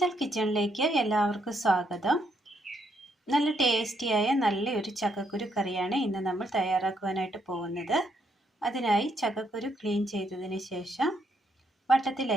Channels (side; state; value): both; normal; correlation 0.75